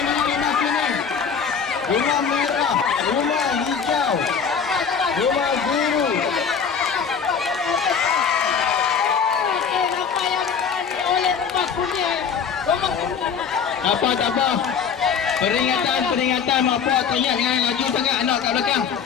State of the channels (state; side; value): quieter; right; 6.6 dB